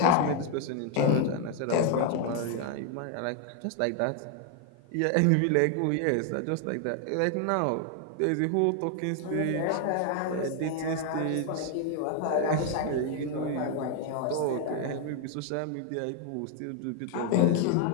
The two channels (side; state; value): both; different; correlation 0.00